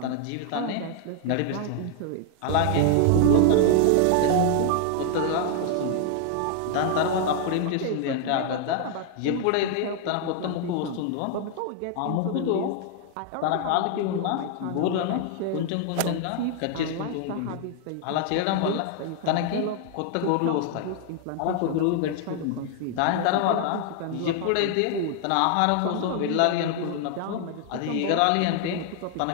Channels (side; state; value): both; different; correlation 0.00